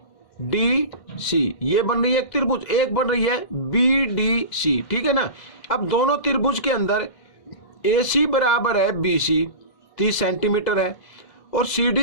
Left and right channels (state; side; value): late; right; 2.0 ms